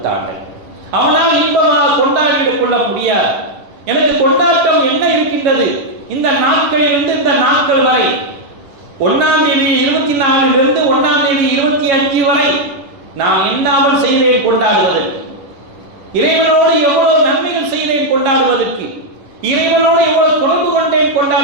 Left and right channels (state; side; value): late; left; 10 ms